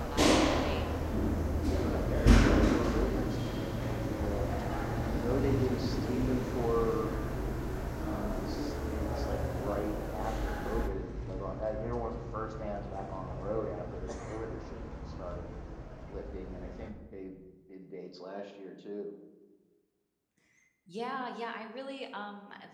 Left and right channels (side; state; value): both; identical; correlation 1.00